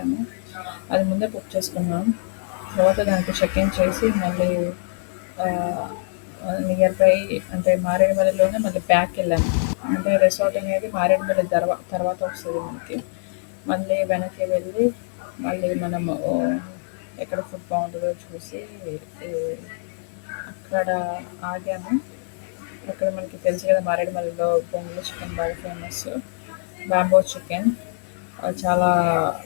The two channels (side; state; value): right; silent; digital silence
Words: అది ముందే బుక్ చేసుకున్నాం. తర్వాత దానికి చెక్ ఇన్ చేసి మళ్ళీ నియర్ బై అంటే మారేడుమల్లిలోనే మళ్ళీ బ్యాక్ వెళ్ళాము. అంటే రిసార్ట్ అనేది మారేడుమల్లి తర్వాత వస్తుంది మనకి. మళ్ళీ వెనక్కి వెళ్ళి మళ్ళీ మనము ఎక్కడ ఫుడ్ బాగుంటుందో చూసి అక్కడ ఆగాము. అక్కడ మనకి తెలుసు కదా మారేడుమల్లిలో బొంగులో చికెన్ బాగా ఫేమస్. బ్యాంబో చికెన్ చాలా